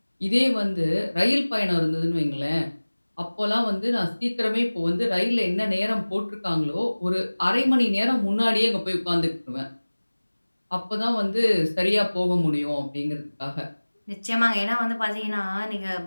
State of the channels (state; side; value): inverted; both; correlation -1.00